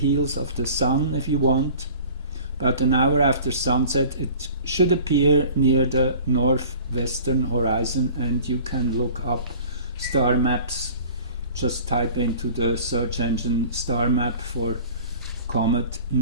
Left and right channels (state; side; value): inverted; both; correlation -0.44